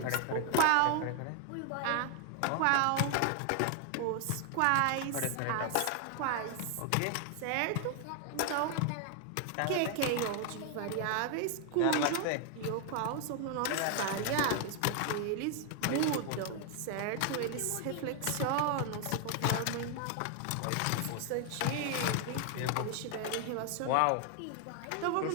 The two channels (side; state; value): both; different; correlation 0.00